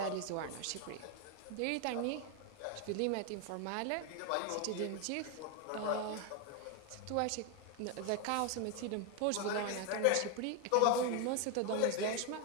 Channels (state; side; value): different; both; correlation 0.01